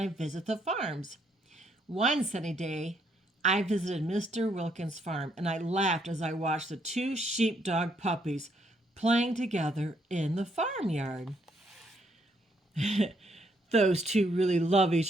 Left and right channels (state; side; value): normal; both; correlation 0.72